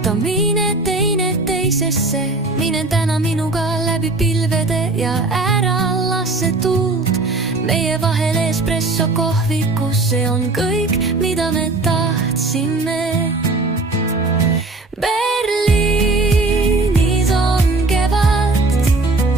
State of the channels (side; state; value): left; quieter; 3.2 dB